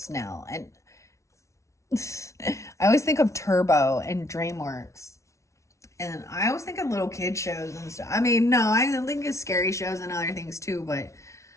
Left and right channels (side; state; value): right; late; 0.14 ms